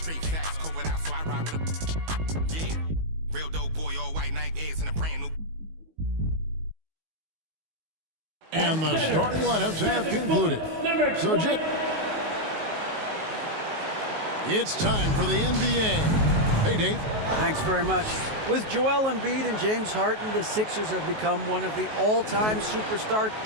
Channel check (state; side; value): late; left; 19 ms